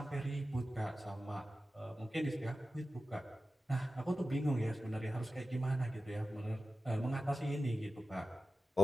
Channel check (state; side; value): normal; both; correlation 0.94